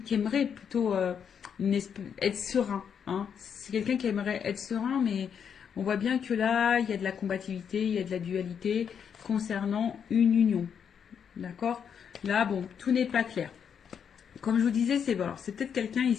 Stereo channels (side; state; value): right; quieter; 7.5 dB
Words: qui aimerait plutôt être serein. Hein. C'est quelqu'un qui aimerait être serein, mais on voit bien que là, il y a de la combativité, il y a de la dualité concernant une union. D'accord. Là, bon, tout n'est pas clair. Comme je vous disais, c'est peut-être quelqu'un